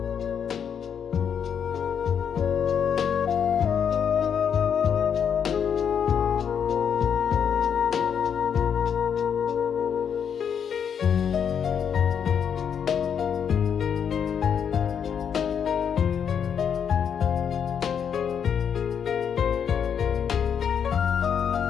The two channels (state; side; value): quieter; right; 7.8 dB